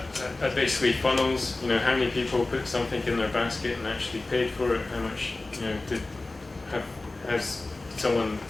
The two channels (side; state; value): right; quieter; 3.1 dB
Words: basically funnels. How many people put something in their basket and actually paid for it? How much has someone